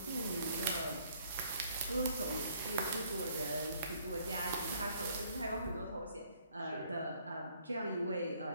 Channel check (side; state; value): both; inverted; correlation -0.63